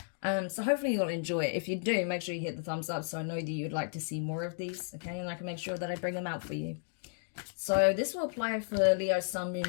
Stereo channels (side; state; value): right; silent; digital silence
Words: So hopefully you'll enjoy it. If you do, make sure you hit the thumbs up so I know that you'd like to see more of these, okay? And I can make sure that I bring them out for you. So this will apply for Leo, Sun,